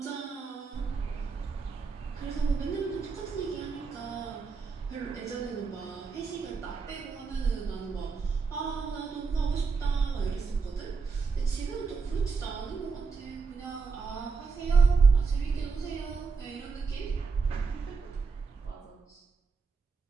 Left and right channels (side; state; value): left; quieter; 4.9 dB